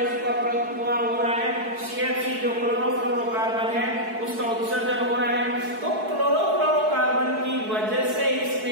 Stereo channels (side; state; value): left; late; 4.6 ms